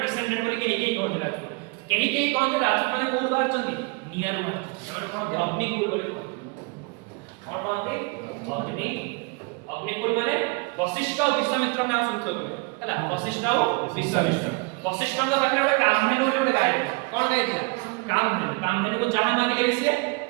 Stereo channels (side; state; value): left; quieter; 29.9 dB